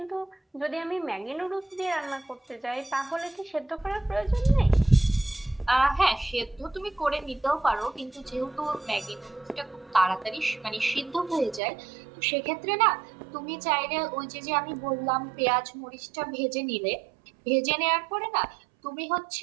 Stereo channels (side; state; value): left; drops out; at 11.6 s